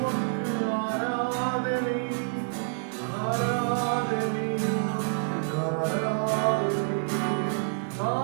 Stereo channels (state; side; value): silent; left; digital silence